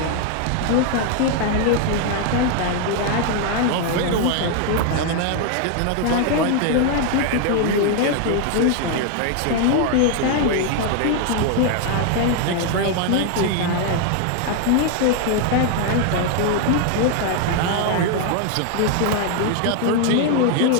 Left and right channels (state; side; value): different; both; correlation 0.00